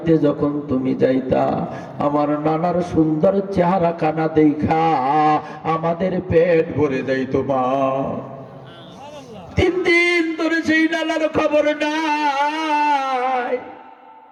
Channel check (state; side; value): identical; both; correlation 1.00